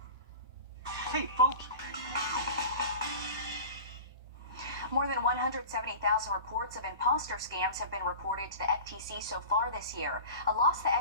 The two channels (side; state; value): both; inverted; correlation -0.35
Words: Hey, folks. More than 170,000 reports of imposter scams have been reported to the FTC so far this year. A loss the